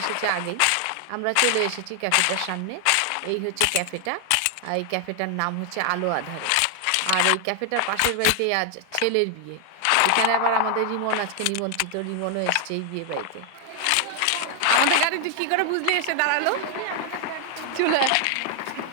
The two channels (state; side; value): different; both; correlation 0.00